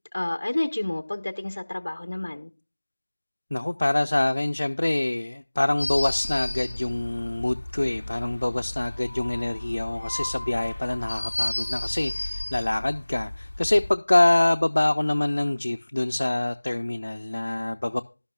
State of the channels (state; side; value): inverted; both; correlation -1.00